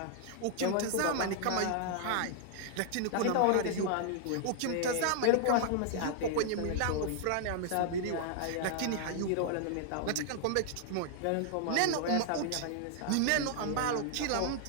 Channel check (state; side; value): different; both; correlation 0.00